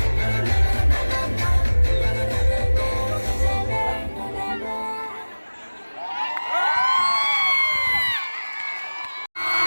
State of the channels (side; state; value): both; inverted; correlation -1.00